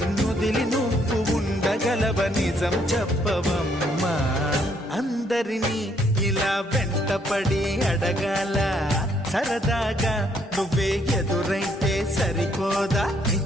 నువ్వు ఉండగలవ నిజం చెప్పవమ్మా అందరినీ ఇలా వెంటపడి అడగాల సరదాగా నువ్వే ఎదురైతే సరిపోదా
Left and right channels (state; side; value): normal; both; correlation 0.69